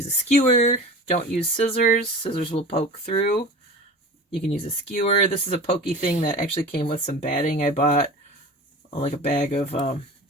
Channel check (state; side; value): normal; both; correlation 0.35